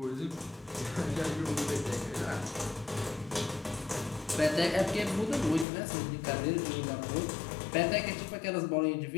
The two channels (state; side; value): drops out; right; at 5.7 s